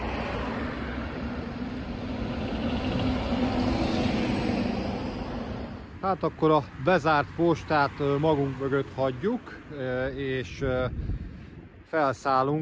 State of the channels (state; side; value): identical; both; correlation 1.00